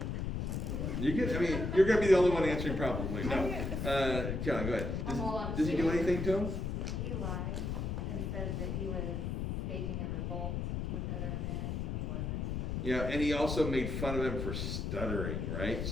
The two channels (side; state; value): left; noise; rumble, 2 dB below the sound